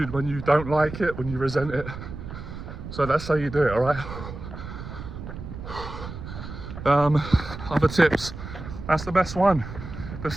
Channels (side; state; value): right; noise; rumble, 10 dB below the sound